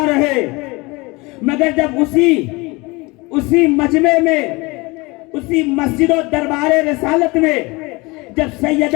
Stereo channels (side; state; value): right; quieter; 24.6 dB